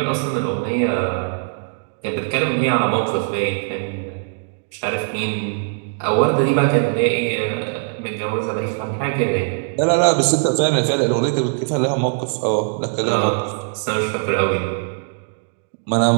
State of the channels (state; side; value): silent; left; digital silence